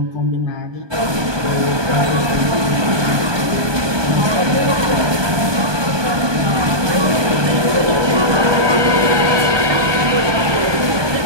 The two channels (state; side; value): late; left; 1.2 ms